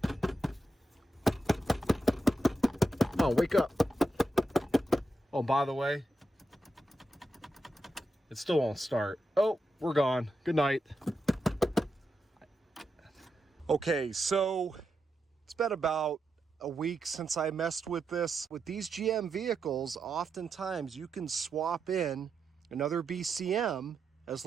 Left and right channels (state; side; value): normal; both; correlation 0.86